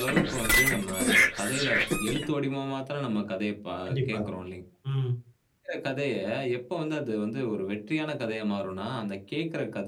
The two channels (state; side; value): identical; both; correlation 1.00